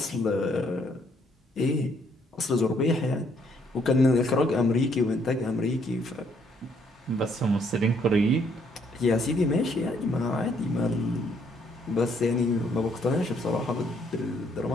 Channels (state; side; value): normal; both; correlation 0.68